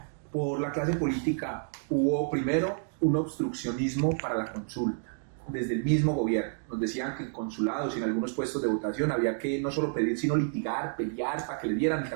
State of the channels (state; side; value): silent; left; digital silence